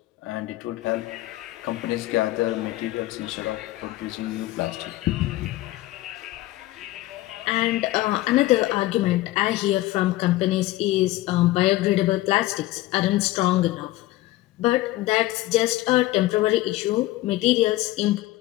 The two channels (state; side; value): quieter; right; 17.0 dB